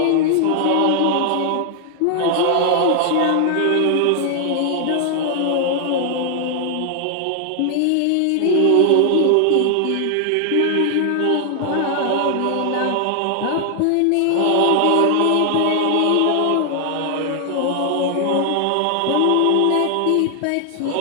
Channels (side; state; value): both; different; correlation 0.00